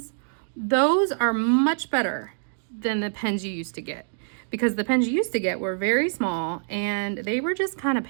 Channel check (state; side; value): silent; left; digital silence